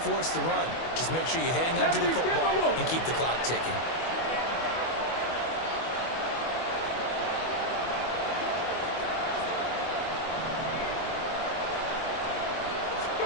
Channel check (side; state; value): right; late; 24 ms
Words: force the run. Just make sure you hang on to the football and keep the clock ticking.